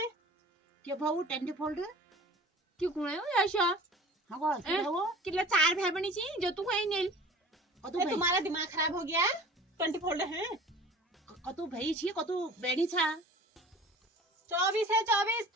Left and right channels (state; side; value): normal; both; correlation 0.43